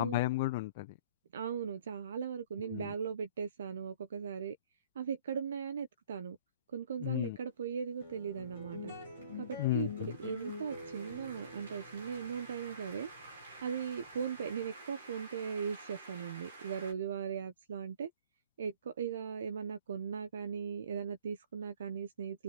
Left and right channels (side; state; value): both; inverted; correlation -0.54